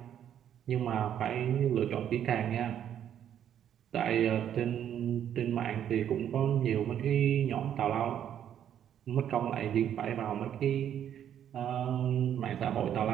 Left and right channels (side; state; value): left; quieter; 9.9 dB